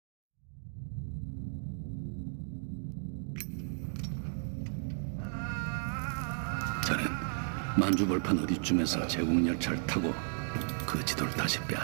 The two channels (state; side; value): silent; left; digital silence